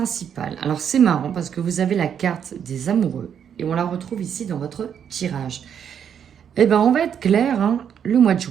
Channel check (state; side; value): quieter; left; 8.3 dB